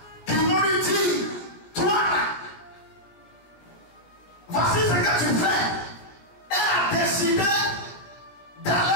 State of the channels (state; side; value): late; right; 16 ms